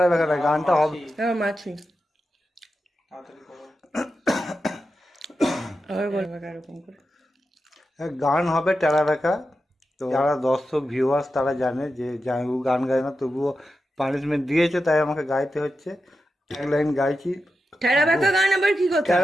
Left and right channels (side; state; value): both; normal; correlation 0.90